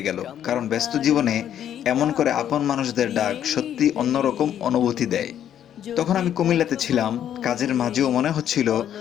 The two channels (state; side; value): quieter; right; 10.2 dB